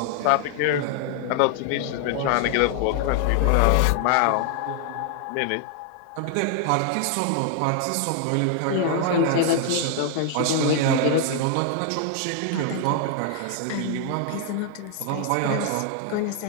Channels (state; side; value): different; both; correlation 0.00